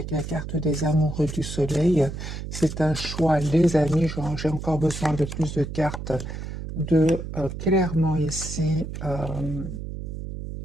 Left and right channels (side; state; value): right; noise; hum, 7 dB below the sound